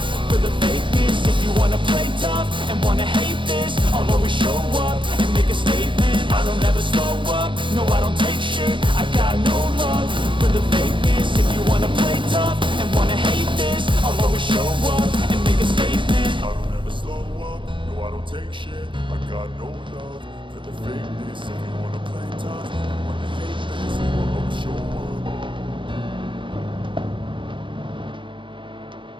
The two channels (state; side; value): late; left; 0.24 ms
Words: for the fakeness. If you wanna play tough and wanna hate this, I'll always show up and make a statement. I don't ever slow up, no I don't take shit, I got no love for the fakeness. If you wanna play tough and wanna hate this, I'll always show up and make a statement. I don't ever slow up, no I don't take shit, I got no love for the fakeness. If you wanna play tough and wanna hate this, I'll always show up.